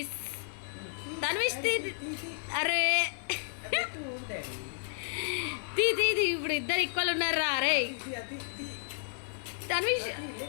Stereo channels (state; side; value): silent; right; 56 dB below the other